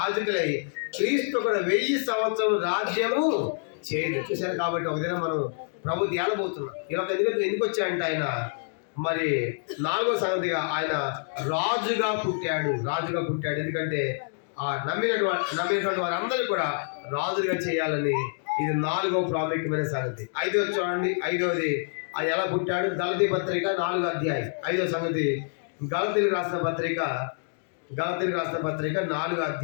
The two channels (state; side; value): silent; right; digital silence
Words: క్రీస్తు కూడా 1000 సంవత్సరం రాజ్యము చేయదు. చూశారు కాబట్టి ఒక దినం మనం ప్రభు ఏలబోతున్నాం. ఇలా ఎందుకు వచ్చాయంటే ఆయన మరి 4వ సంగతిగా ఆయన రాజుగా పుట్టాడు. ఎందుకంటే ఆ నమ్మినటువంటి వారందరూ కూడా రాజుగా చేయాలని. ఇది 4వ ప్రాముఖ్యమైన సంగతి. 5వ చూడండి. 5వది ఆయన ఎలా పుట్టాడు. గలతీ పత్రిక 4వ అధ్యాయం 5వ సంగతి. గలతీలకు రాసిన పత్రిక 4వ